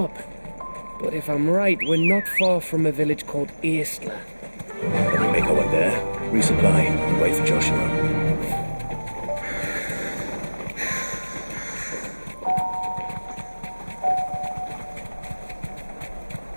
But if I'm right, we're not far from a village called Aistla. Let me make our way there, resupply, and wait for Joshua.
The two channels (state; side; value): inverted; both; correlation -1.00